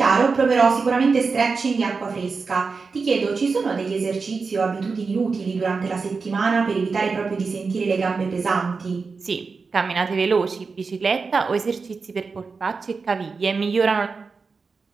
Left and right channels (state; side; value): quieter; left; 4.7 dB